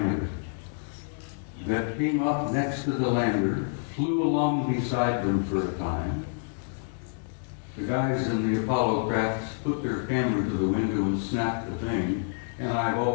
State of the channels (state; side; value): silent; right; digital silence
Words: that came up next to the lander, flew along beside them for a time. The guys in the Apollo crafts put their camera to the window and snapped the thing, and I've